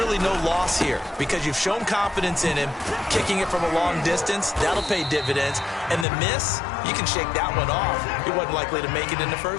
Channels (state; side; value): drops out; right; at 6.1 s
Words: no loss here because you've shown confidence in him. Kicking it from a long distance, that'll pay dividends. And the miss, you can shake that one off. It wasn't likely to make it in the